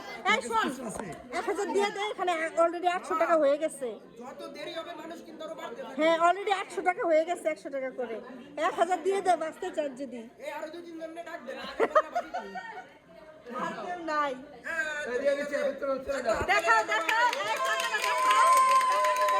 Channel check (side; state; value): both; identical; correlation 1.00